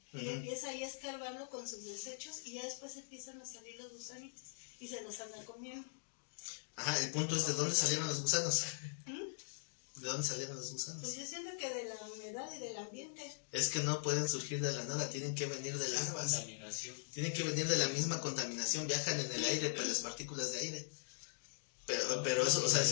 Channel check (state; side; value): silent; right; digital silence